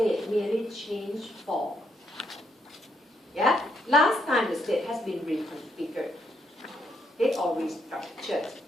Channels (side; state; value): both; normal; correlation 0.76